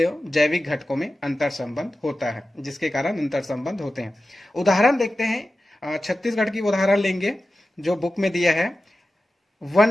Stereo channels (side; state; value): both; normal; correlation 0.94